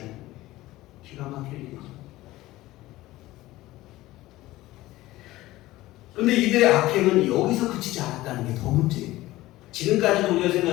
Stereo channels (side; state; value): right; quieter; 17.3 dB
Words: 거예요. 기가 막힐 일이죠. 그런데 이들의 악행은 여기서 그치지 않았다는 게 더 문제예요. 지금까지도 우리가